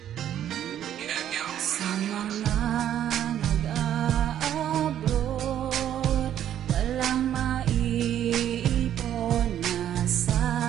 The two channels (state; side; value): quieter; left; 10.7 dB